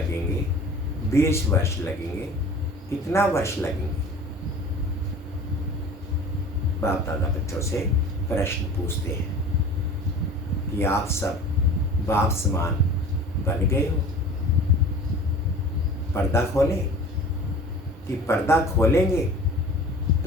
20 वर्ष लगेंगे, कितना वर्ष लगेंगे? बाप दादा बच्चों से प्रश्न पूछते हैं कि आप सब बाप समान बन गए हो? पर्दा खोलें कि पर्दा खोलेंगे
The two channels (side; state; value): both; normal; correlation 0.41